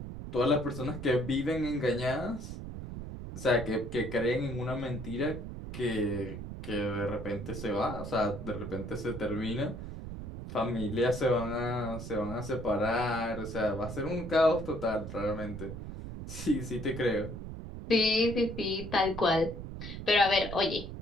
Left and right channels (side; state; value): right; noise; rumble, 9 dB below the sound